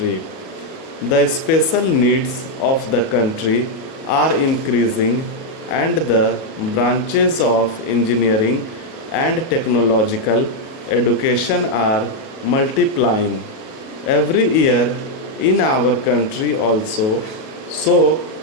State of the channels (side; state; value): right; late; 37 ms